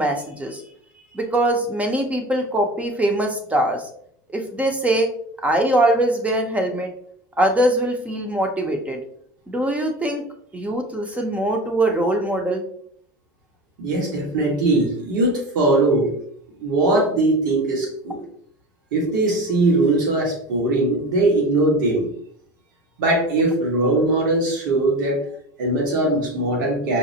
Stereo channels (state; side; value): normal; both; correlation 0.33